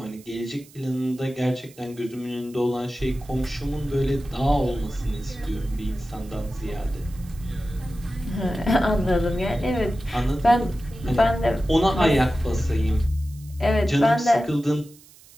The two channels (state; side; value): noise; right; hiss, 24 dB below the sound